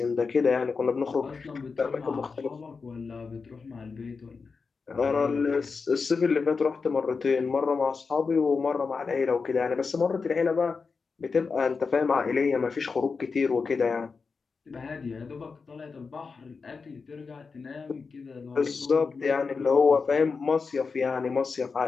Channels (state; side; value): quieter; right; 4.8 dB